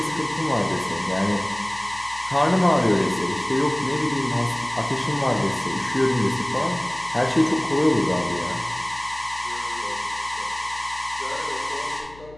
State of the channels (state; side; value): noise; left; hum, 21 dB below the sound